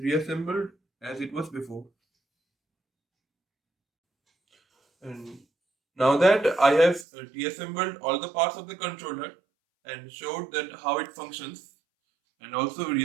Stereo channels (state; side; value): drops out; left; at 7.1 s